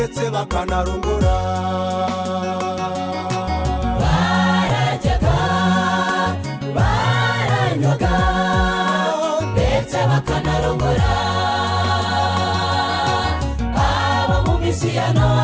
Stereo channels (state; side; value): identical; both; correlation 1.00